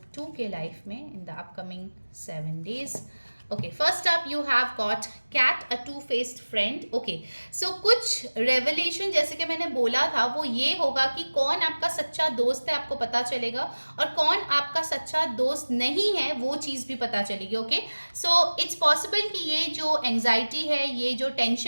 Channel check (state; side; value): inverted; both; correlation -1.00